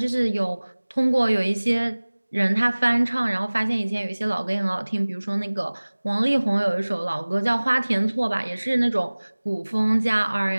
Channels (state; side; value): inverted; both; correlation -1.00